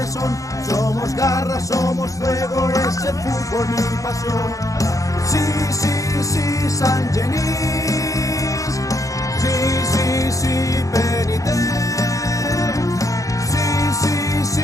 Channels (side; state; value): right; late; 0.16 ms